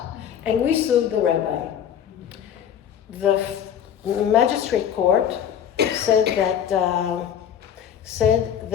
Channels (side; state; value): right; quieter; 9.1 dB